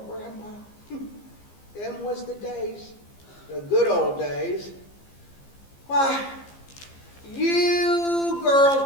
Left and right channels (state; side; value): late; right; 15 ms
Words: grandpa. Them was the days, the good old days. Why, you